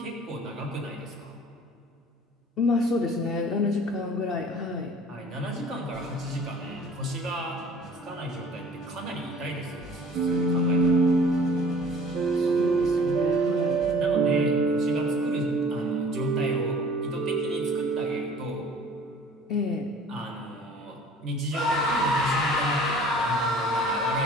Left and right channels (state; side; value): normal; both; correlation 0.48